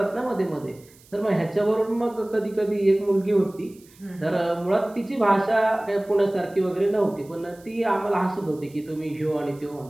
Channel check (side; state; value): right; noise; hiss, 27 dB below the sound